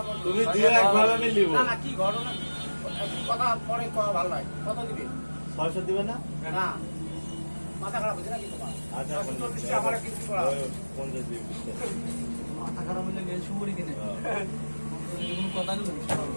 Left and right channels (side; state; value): both; inverted; correlation -1.00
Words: বল তুমি দিয়ে একভাবে আমি নিব না না কি ঘটনা কি কথা পরে কওয়া ভালো হয় কত দিবি 600 দিবে না না মাথা খারাপ হচ্ছে নাকি তোমার আচ্ছা 40 টাকা আমার কিছু করা 50 দিবি মাথা খারাপ হলে গেল সুপুরি কিনে কোনো কথা নেই